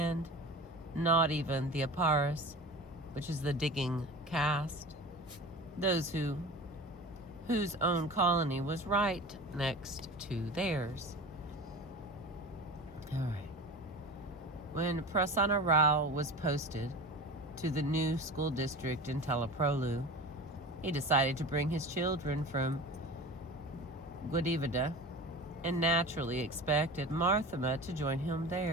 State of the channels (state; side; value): normal; both; correlation 0.34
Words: not even the Aparis, which is the digging caste, those whose own colony was right next to theirs. All right. When Prasanna Rao was posted to the new school district in Teleprolu. He decided to bring his children from Guadivida and naturally expected Marthama to join him